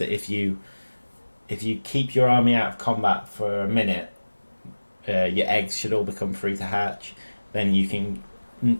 if you keep your army out of combat for a minute, your eggs should all become free to hatch. Then you can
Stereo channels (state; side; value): inverted; both; correlation -1.00